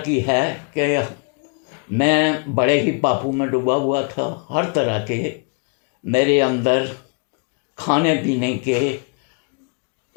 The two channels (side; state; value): right; quieter; 37.3 dB